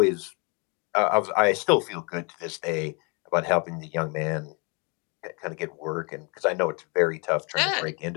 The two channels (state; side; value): quieter; right; 33.0 dB